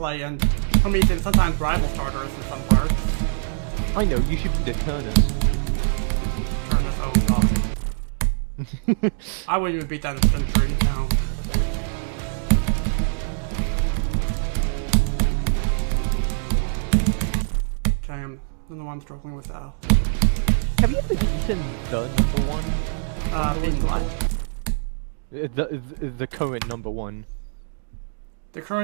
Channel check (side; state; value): left; silent; digital silence